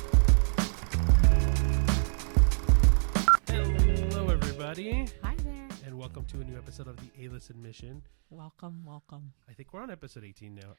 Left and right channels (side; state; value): left; silent; digital silence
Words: Hello, everybody. Hi there. And welcome to a new episode of the A-List Admission. Welcome. I think we're on episode 18 now.